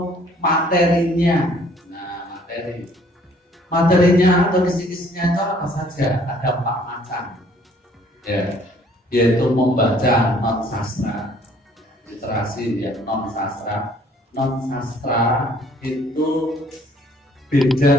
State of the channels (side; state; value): both; normal; correlation 0.59